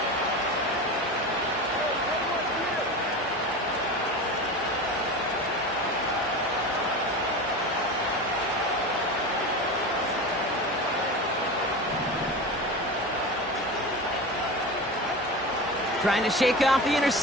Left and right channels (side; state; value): both; normal; correlation 0.28